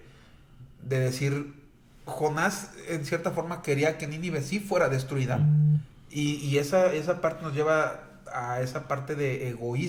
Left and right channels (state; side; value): identical; both; correlation 1.00